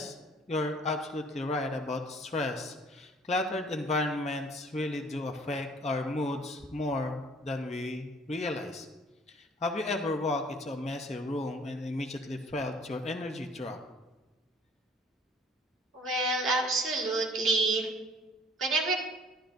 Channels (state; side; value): normal; both; correlation 0.54